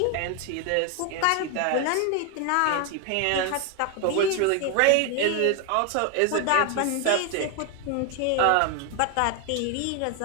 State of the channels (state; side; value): different; both; correlation 0.01